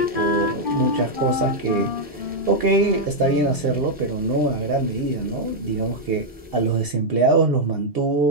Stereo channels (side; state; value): both; normal; correlation -0.02